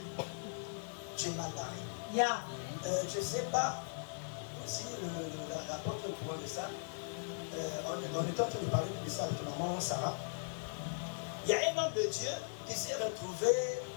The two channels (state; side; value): silent; right; digital silence